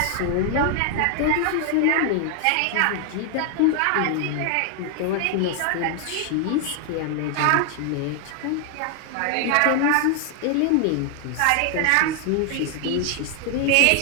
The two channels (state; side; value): different; both; correlation 0.00